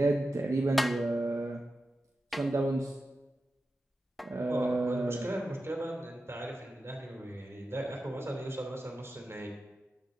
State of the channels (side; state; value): both; normal; correlation 0.91